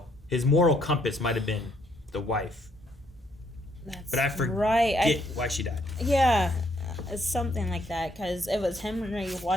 his moral compass might have been the wife. That's but I forget right. why she died. Yeah, it's something like that because it was Henry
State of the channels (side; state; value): both; normal; correlation 0.70